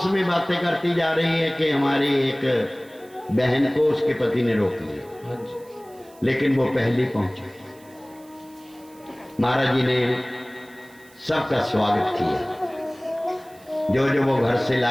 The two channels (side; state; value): right; noise; hiss, 27 dB below the sound